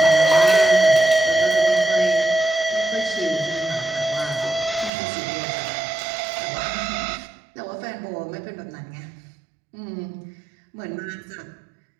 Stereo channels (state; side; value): drops out; left; at 4.9 s